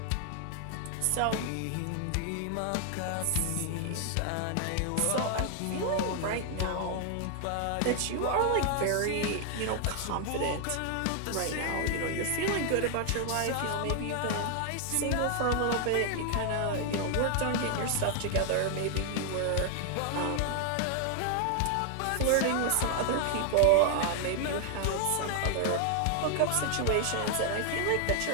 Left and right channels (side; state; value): both; different; correlation 0.00